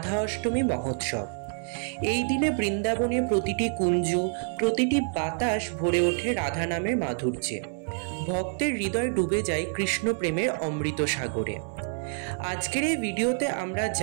অষ্টমী মহোৎসব। এই দিনে বৃন্দাবনের প্রতিটি কুঞ্জ, প্রতিটি বাতাস ভরে ওঠে রাধা নামের মাধুর্যে। ভক্তের হৃদয় ডুবে যায় কৃষ্ণ প্রেমের অমৃত সাগরে। আজকের এই ভিডিওতে আমরা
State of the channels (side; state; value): left; silent; 60 dB below the other